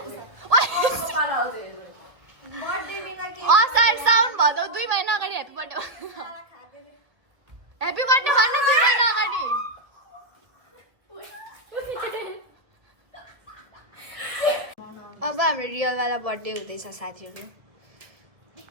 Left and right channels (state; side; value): late; left; 1.5 ms